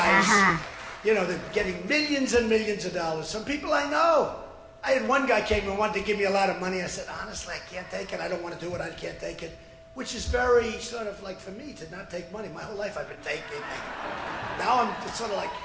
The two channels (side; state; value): both; identical; correlation 1.00